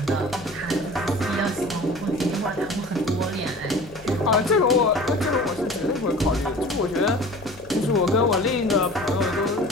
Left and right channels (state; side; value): noise; left; hum, 21 dB below the sound